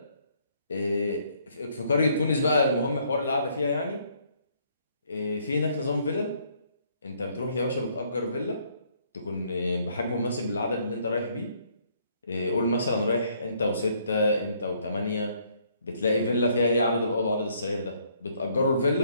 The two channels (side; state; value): both; inverted; correlation -0.67